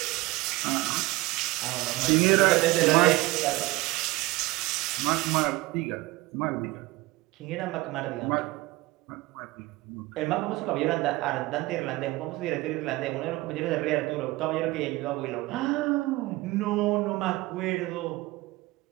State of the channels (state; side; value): quieter; left; 20.4 dB